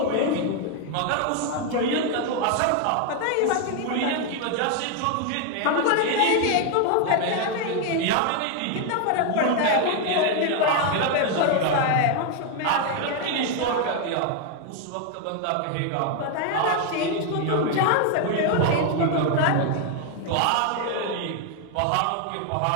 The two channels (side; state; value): both; different; correlation 0.01